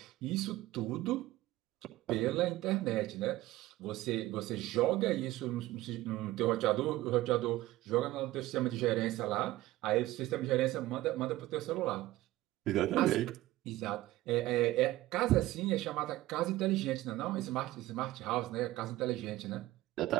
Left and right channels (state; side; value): quieter; left; 16.8 dB